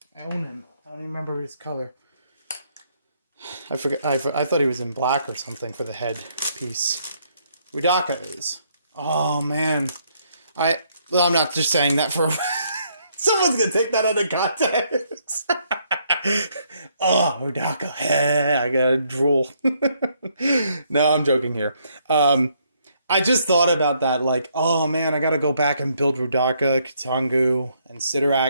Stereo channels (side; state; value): both; inverted; correlation -0.71